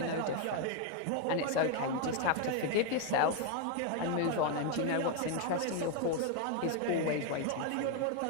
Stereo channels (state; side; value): different; both; correlation 0.01